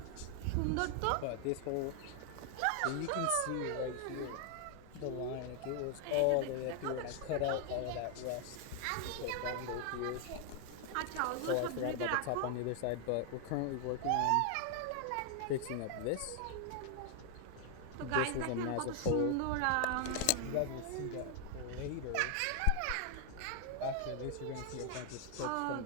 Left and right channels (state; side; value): different; both; correlation 0.00